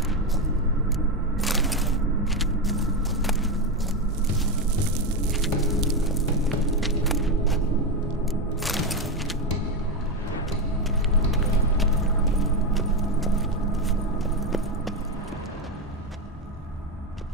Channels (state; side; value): normal; both; correlation 0.11